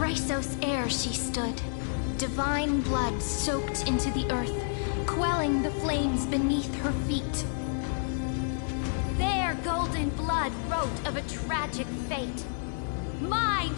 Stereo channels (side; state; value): right; silent; 58 dB below the other